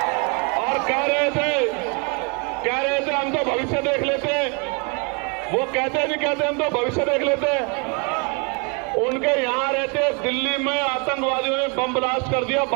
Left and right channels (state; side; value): quieter; left; 32.5 dB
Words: और कह रहे थे हम तो भविष्य देख लेते हैं। वो कहते नहीं कहते हम तो भविष्य देख लेते हैं। उनके यहां रहते दिल्ली में आतंकवादियों ने बम ब्लास्ट कर दिया,